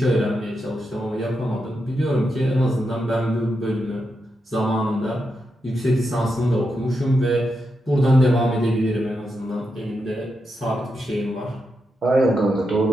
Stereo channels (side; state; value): both; normal; correlation 0.85